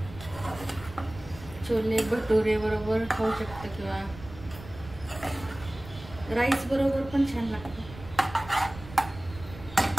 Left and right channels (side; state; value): right; noise; rumble, 16 dB below the sound